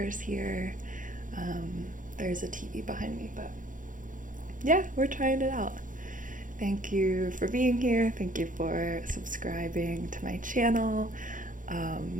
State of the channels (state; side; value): late; left; 0.38 ms